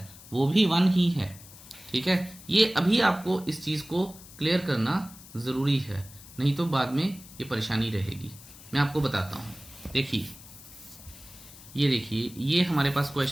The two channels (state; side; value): noise; left; hiss, 19 dB below the sound